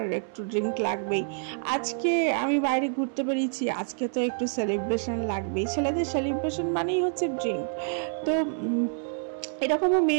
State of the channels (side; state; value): left; silent; 60 dB below the other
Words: একটু ড্রিঙ্ক লাগবেই, আজকে আমি বাইরে ঘুরতে বেরিয়েছি, আজকে তো একটু সেলিব্রেশন লাগবেই। ছেলেদের সেলিব্রেশন মানেই হচ্ছে ড্রিঙ্ক। তো এরকমও